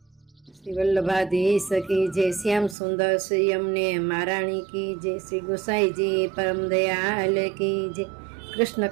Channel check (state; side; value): drops out; left; at 2.8 s